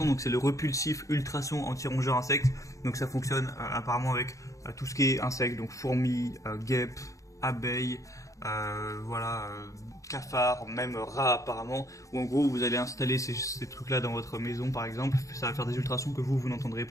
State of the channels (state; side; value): late; right; 0.15 ms